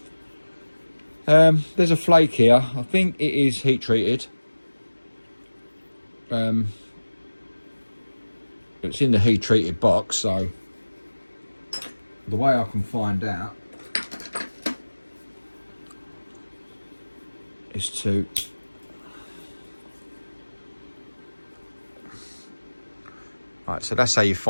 There's a flake here. I think it is heat treated. It's in the heat treated box, so the way I can find out is to right, so that's how you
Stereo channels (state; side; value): inverted; both; correlation -1.00